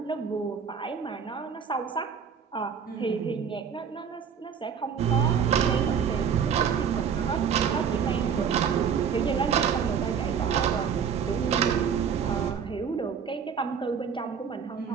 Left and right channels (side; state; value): left; quieter; 7.1 dB